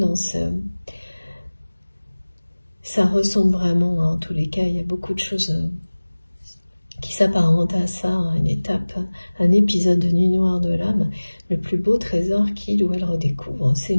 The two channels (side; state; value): both; inverted; correlation -1.00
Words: ça ressemble vraiment, hein, en tous les cas, il y a beaucoup de choses qui s'apparentent à ça, hein, une étape, un épisode de Nuit Noire de l'âme. Le plus beau trésor qu'il ou elle redécouvre, c'est